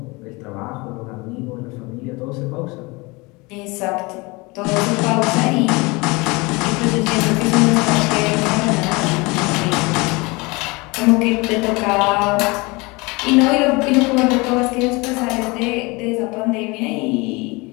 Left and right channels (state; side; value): quieter; right; 25.5 dB